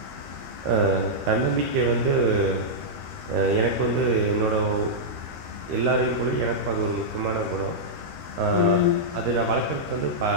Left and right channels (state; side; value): late; left; 13 ms